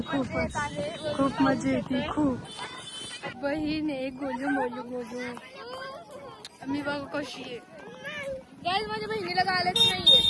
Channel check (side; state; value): both; identical; correlation 1.00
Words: खूप मजा येते. खूप बहीण आहे गोलू मोलू गोलू. मी बघ कशी आहे. गाईज माझ्या बहिणीला गायलाच नाहीये.